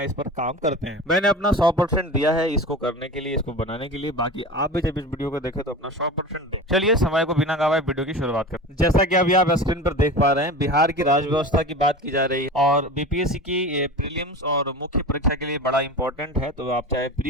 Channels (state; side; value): normal; both; correlation 0.31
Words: पर काम करते हैं। मैंने अपना 100% दिया है इसको करने के लिए, इसको बनाने के लिए। बाकी आप भी जब इस वीडियो को देखें तो अपना 100% दो। चलिए समय को बिना गवाए वीडियो की शुरुआत करते हैं। जैसा कि अभी आप स्क्रीन पर देख पा रहे हैं, बिहार की राज्य व्यवस्था की बात की जा रही है और बीपीएससी की प्रीलिम्स और मुख्य परीक्षा के लिए बड़ा इंपॉर्टेंट है। तो आप चाहे